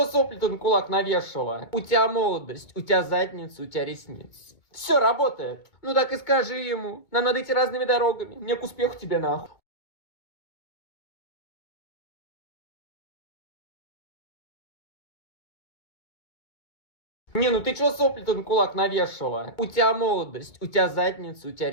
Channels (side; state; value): right; late; 2.2 ms